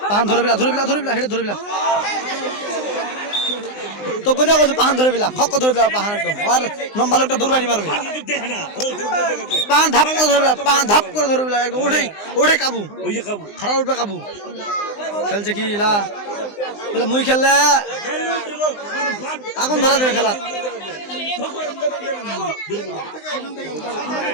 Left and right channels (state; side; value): late; right; 19 ms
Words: পাহান ধরে বিলা হেঁটে ধরে বিলা তো কোথা কোথাও পাহান ধরে বিলা খক্ক ধরে বিলা পাহান একদম আর লম্বা লোকটা দূরবানি মারবে পাহান ধাপ করে ধরে বিলা পাহান ধাপ করে ধরে বিলা একদম ওঠে কাবু খারাপ উঠবে কাবু খেলছে কি ইলা মুই খেললে আগুন ধরা দেবে খেলা